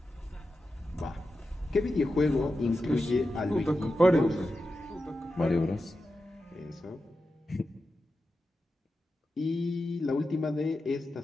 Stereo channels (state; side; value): normal; both; correlation 0.91